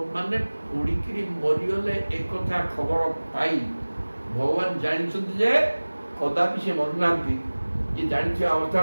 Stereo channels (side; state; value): both; inverted; correlation -1.00